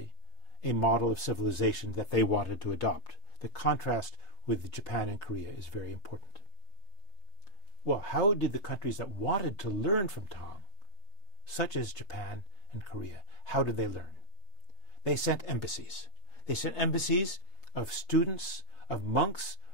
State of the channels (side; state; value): right; late; 3.3 ms